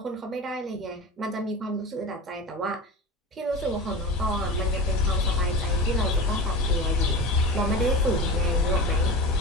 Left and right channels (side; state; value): both; normal; correlation 0.30